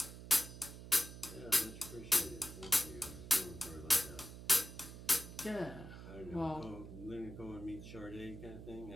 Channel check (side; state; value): right; noise; hum, 12 dB below the sound